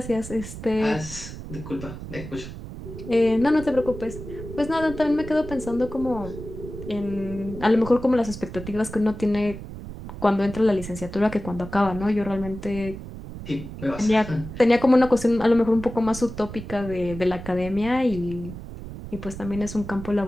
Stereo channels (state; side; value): noise; right; rumble, 11 dB below the sound